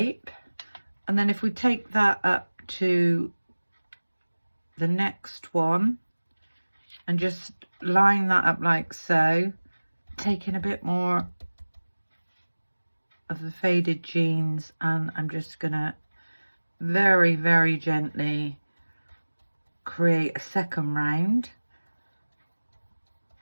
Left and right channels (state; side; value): inverted; both; correlation -1.00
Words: And then if we take that up to the next one and just line that up like so, taking a bit more of the faded jeans, and I'm just gonna very, very gently create a second round.